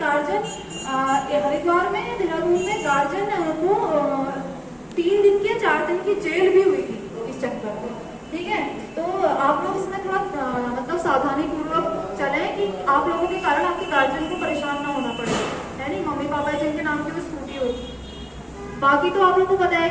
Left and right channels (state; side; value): identical; both; correlation 1.00